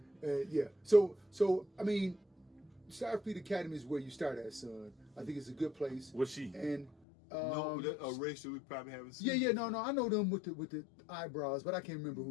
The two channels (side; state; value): right; drops out; at 7.0 s